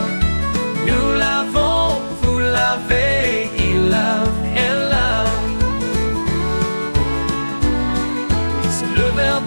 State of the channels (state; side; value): inverted; both; correlation -1.00